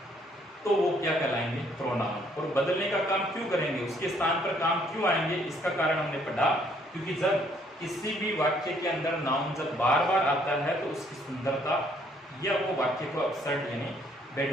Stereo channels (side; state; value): both; normal; correlation 0.65